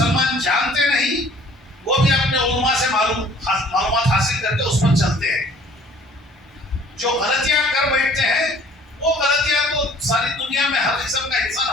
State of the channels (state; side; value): normal; both; correlation 0.54